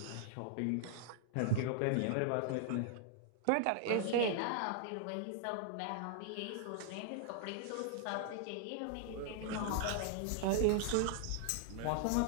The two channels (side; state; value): both; different; correlation -0.01